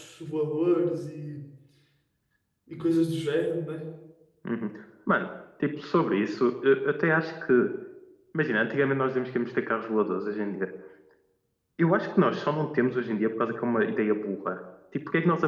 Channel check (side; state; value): both; identical; correlation 1.00